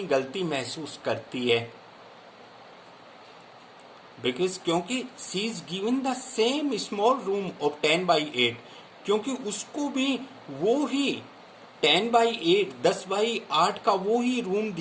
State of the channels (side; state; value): both; identical; correlation 1.00